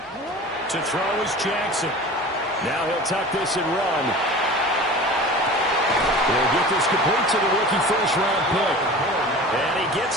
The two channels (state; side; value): normal; both; correlation 0.37